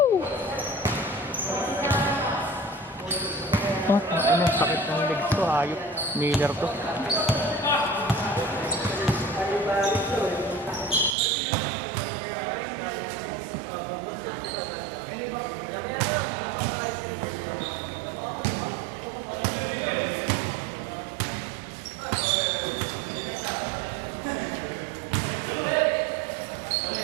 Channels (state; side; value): drops out; left; at 11.2 s